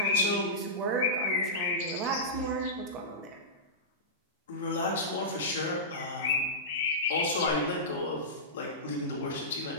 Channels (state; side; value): normal; both; correlation -0.17